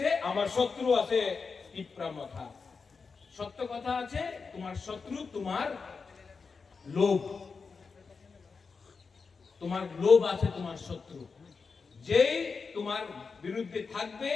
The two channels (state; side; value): quieter; right; 4.9 dB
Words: আমার শত্রু আছে তিপরা মাথা। সত্য কথা আছে, তোমার শত্রু তোমার লোভ, তোমার লোভ আছে তোমার শত্রু। যেই তোমার বিরুদ্ধে থাকবে,